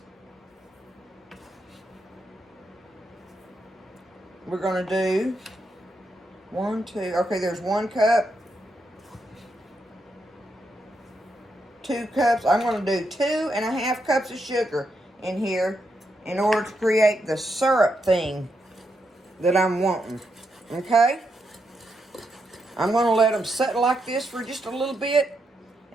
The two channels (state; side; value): normal; both; correlation 0.82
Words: we're going to do 1, 2. Okay, there's 1 cup. 2 cups. I'm going to do 2.5 cups of sugar in here in order to create the syrup thing that I'm wanting. Okay? I'm going to let them sit like this for just a little bit